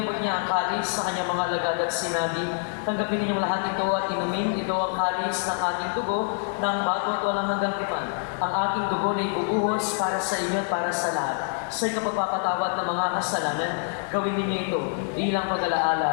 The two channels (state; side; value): silent; right; digital silence